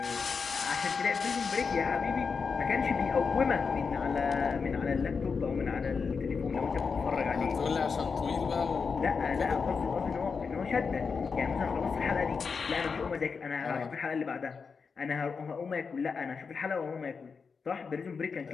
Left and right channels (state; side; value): quieter; right; 5.3 dB